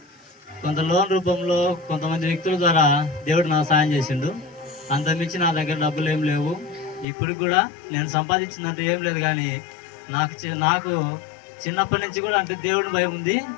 కొంత లోన్ రూపంలో కొంతమంది వ్యక్తుల ద్వారా దేవుడు నాకు సాయం చేసిండు. అంతమించి నా దగ్గర డబ్బులు ఏం లేవు. ఇప్పుడు కూడా నేను సంపాదించిందంటే ఏం లేదు, కానీ నాకు చిన్నప్పటి నుంచి కూడా అంటే దేవుడిని భయం ఉంది.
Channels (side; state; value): right; drops out; at 7.1 s